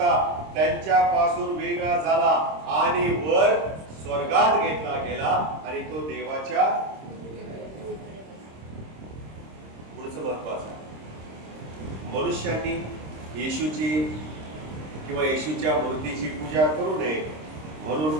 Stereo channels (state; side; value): late; left; 26 ms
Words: त्यांच्यापासून वेगळा झाला आणि वर स्वर्गात घेतला गेला आणि तो देवाच्या. पुढचं महत्वाचं, मनुष्यांनी येशूची किंवा येशूच्या मूर्तीची पूजा करू नये